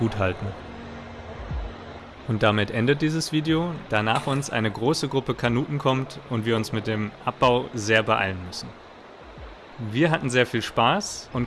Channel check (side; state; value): both; identical; correlation 1.00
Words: halten. Und damit endet dieses Video, da nach uns eine große Gruppe Kanuten kommt und wir uns mit dem Abbau sehr beeilen müssen. Wir hatten sehr viel Spaß